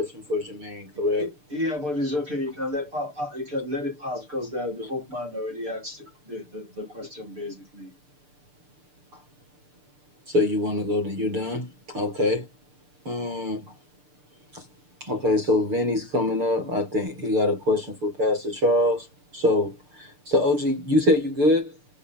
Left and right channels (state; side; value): late; left; 6.7 ms